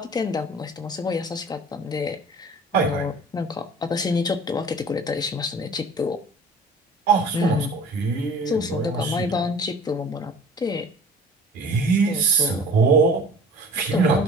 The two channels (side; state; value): both; normal; correlation 0.45